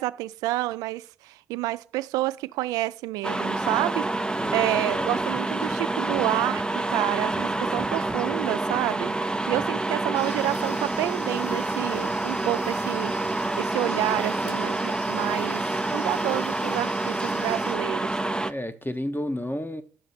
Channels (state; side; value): quieter; left; 5.1 dB